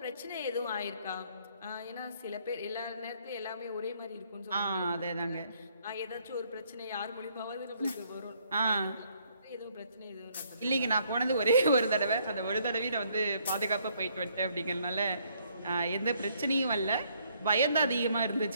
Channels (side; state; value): both; inverted; correlation -0.67